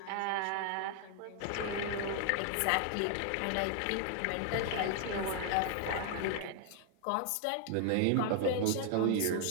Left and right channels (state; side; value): different; both; correlation 0.00